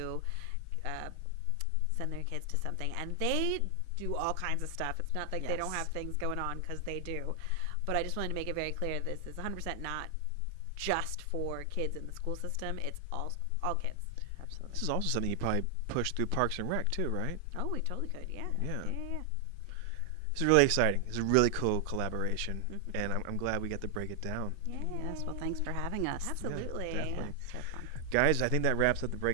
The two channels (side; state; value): both; different; correlation 0.00